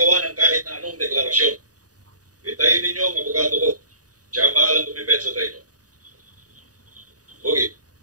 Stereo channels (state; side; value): late; left; 0.68 ms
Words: ng kahit na anong deklarasyon. Itayin ninyo ang abogado ko. Siya ang bahalang tumipet sa inyo. Okay,